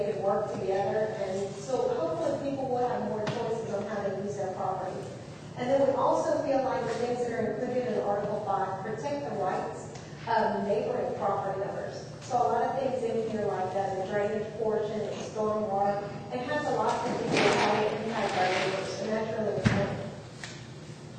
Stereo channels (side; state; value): both; identical; correlation 1.00